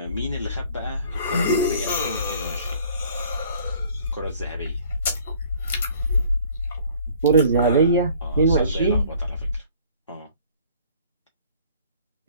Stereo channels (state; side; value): inverted; both; correlation -0.54